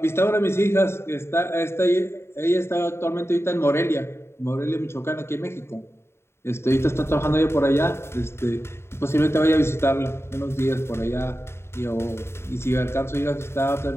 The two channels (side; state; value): right; late; 0.12 ms